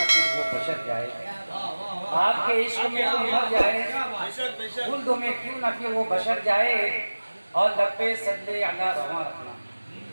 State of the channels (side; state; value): both; inverted; correlation -1.00